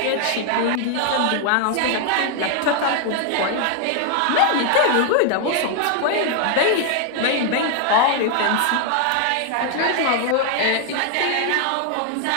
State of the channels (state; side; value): different; both; correlation 0.00